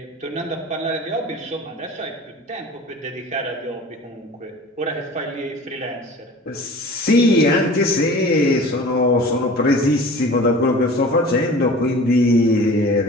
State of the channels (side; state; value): both; normal; correlation 0.41